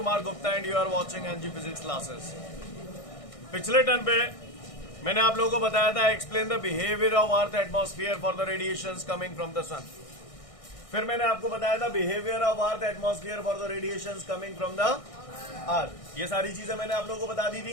Gupta and you are watching NG Physics classes. पिछले टर्न पे मैंने आप लोगों को बताया था explain the behaviour of earth atmosphere for the radiations coming from the sun. फिर मैंने आपको बताया था behaviour of earth atmosphere for the radiations coming from the earth. ये सारी चीजें मैंने आप लोगों को बता दी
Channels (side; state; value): right; late; 1.6 ms